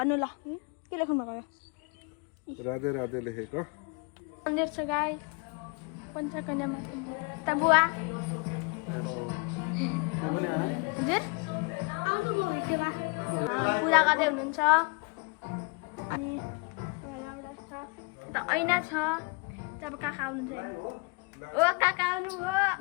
ल के लेख्नु भएको यो राधे राधे लेखेको मन्दिर छ गाई पञ्चकन्या माता त बुवा हजुर आउनुभयो भिडियोमा पूजा गर्दै हुनुहुन्छ अनि एउटा छ यता ऐना छ जब काका आउनुहुन्छ ओ काका आउनु हो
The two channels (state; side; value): quieter; right; 31.5 dB